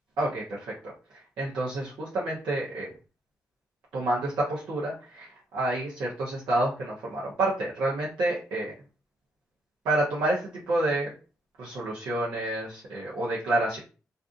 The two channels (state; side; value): normal; both; correlation 0.72